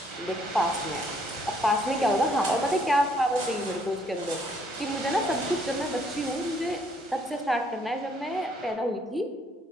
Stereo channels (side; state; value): both; normal; correlation 0.66